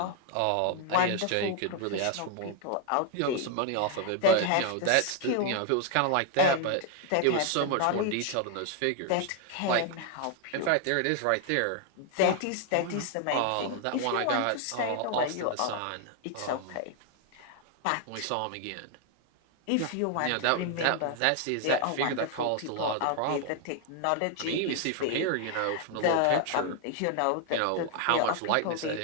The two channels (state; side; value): different; both; correlation 0.00